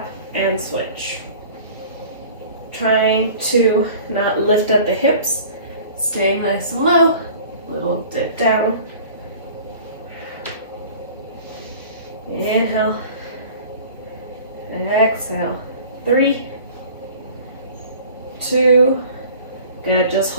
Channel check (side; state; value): both; inverted; correlation -0.45